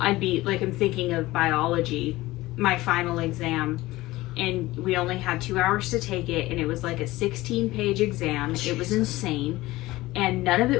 I'd be like, I'm thinking of biology, my final exam, and we only had 2 hours to take it, and it was like a 16-page exam. It was insane, and none of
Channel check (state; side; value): quieter; right; 18.5 dB